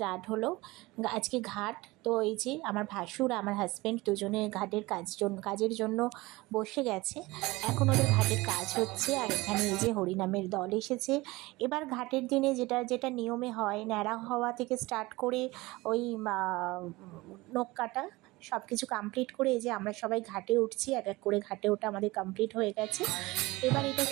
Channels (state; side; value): quieter; left; 21.1 dB